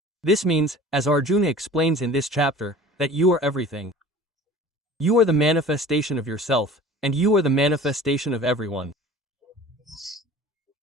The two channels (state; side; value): normal; both; correlation 0.43